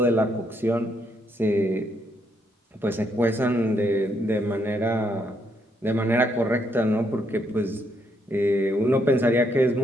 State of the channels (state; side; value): normal; both; correlation 0.75